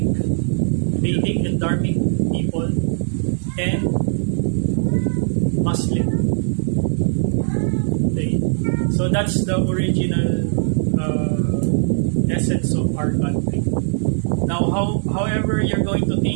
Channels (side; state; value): left; silent; digital silence